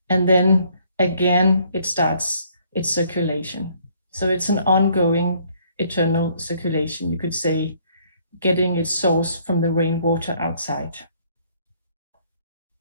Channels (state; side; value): inverted; both; correlation -0.64